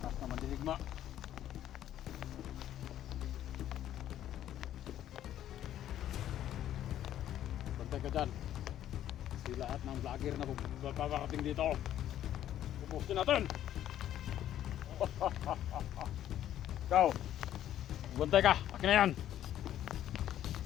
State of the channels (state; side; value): quieter; right; 11.6 dB